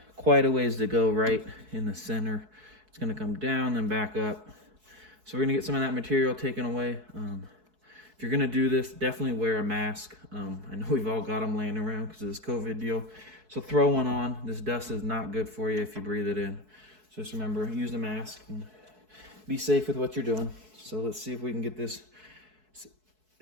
quite a ways to go right in the center. It's going to come down and back up. So we're going to get some of that material taken away. If you're going to do this, definitely wear a mask. I know we've all got them laying around because of this COVID deal. So throw one on. This dust is not good for you if you breathe it in. So just remember, use the mask and be safe with what you're doing. So let's see if we can get this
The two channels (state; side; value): late; left; 4.6 ms